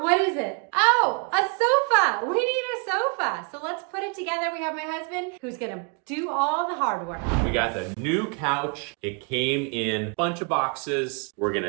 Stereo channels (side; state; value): left; quieter; 36.1 dB